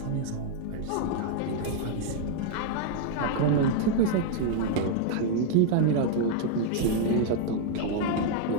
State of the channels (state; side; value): different; both; correlation 0.00